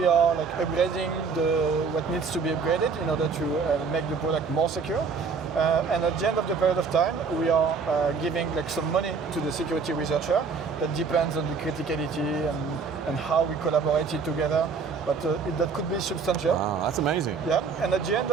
are like upgrading what needs to be upgraded in order to make the product more secure. And at the end of the period of time, we are giving like some money to the security researcher. That depends on the criticality and how we collaborated together. But that could be substantial. Wow, that's amazing. Yeah, and at the end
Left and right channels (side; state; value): left; quieter; 5.2 dB